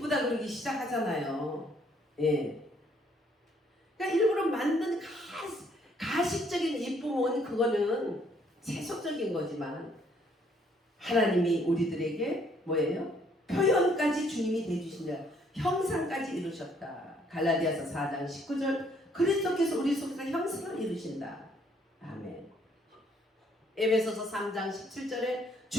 그러기 시작하잖아요. 예. 그러니까 일부러 만든 가식적인 이쁨은 그거는 세속적인 거지만 하나님이 우리들에게 뭐예요? 표현까지 주님이 대주신다. 형상까지 이루셨다. 갈라디아서 4장 19절 그리스도께서 우리 속에서 형상을 이루신다. 아멘. 에베소서 3장 17절에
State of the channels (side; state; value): both; normal; correlation 0.66